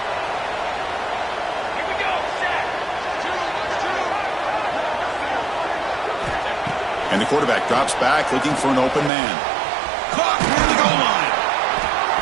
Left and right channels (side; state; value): left; drops out; at 9.1 s